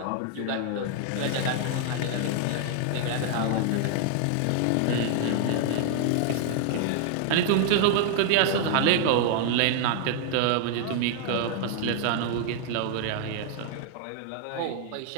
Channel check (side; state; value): both; different; correlation 0.00